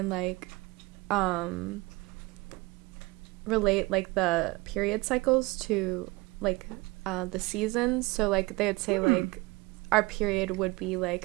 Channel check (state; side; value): quieter; left; 23.3 dB